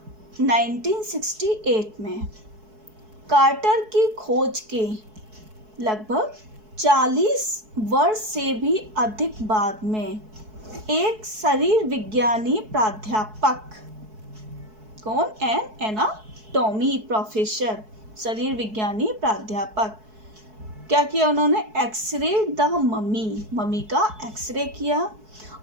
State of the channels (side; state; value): left; late; 4.6 ms